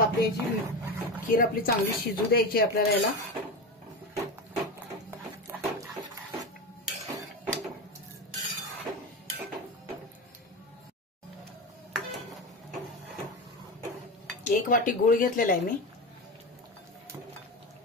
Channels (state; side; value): normal; both; correlation 0.22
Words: आपली याची खीर आपली चांगली शिजू द्यायची आपल्याला। याला एक वाटी गूळ घेतलेला आहे मी।